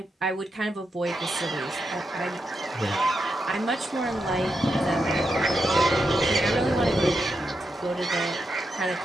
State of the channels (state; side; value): normal; both; correlation 0.85